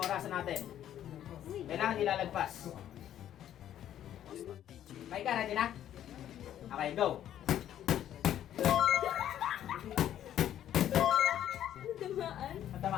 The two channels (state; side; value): quieter; right; 11.1 dB